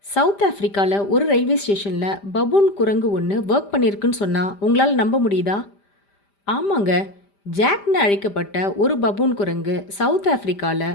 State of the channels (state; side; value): late; right; 5.0 ms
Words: South ஆஃப்ரிக்காவில் ஒரு railway ஸ்டேஷனில் பபூன் குரங்கு ஒன்று ஒர்க் பண்ணியிருக்குன்னு சொன்னால் உங்களால் நம்ப முடியுதா? ஆமாங்க, ஜாக்னு அழைக்கப்பட்ட ஒரு பபூன் குரங்கு சவுத் ஆஃப்ரிக்காவில்